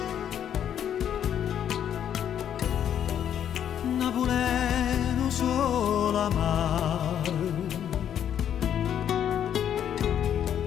Napoleno solo amare,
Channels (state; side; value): quieter; right; 9.5 dB